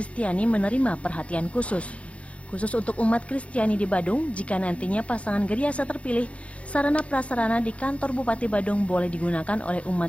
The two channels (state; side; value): late; right; 0.063 ms